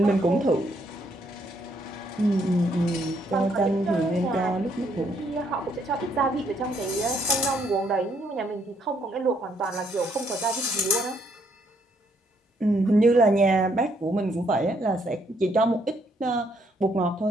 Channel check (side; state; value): both; normal; correlation 0.71